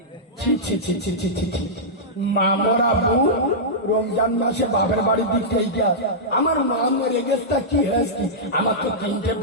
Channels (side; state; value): both; normal; correlation -0.12